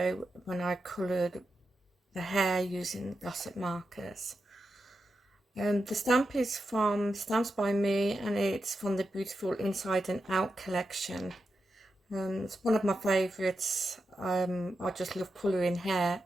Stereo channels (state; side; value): normal; both; correlation 0.88